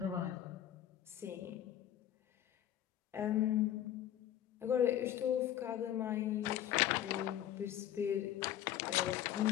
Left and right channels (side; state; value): right; quieter; 11.5 dB